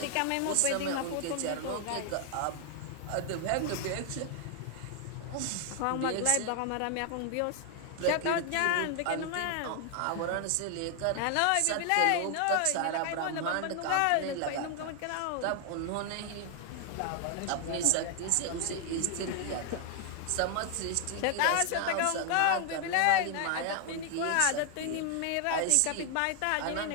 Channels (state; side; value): different; both; correlation 0.00